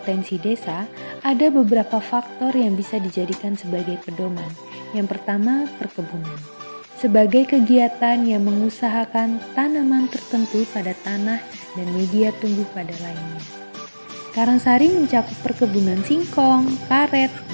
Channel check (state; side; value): inverted; both; correlation -1.00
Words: desa, ada beberapa faktor yang bisa dijadikan sebagai pedoman. Yang pertama, perkebunan. Sebagai kegiatan yang mengusahakan tanaman tertentu pada tanah dan media tumbuh pada lainnya. Karangsari mencakup perkebunan singkong, karet,